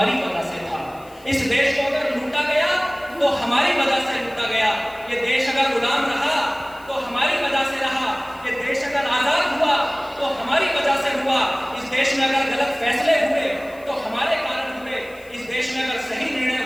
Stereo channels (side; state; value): left; noise; hiss, 26 dB below the sound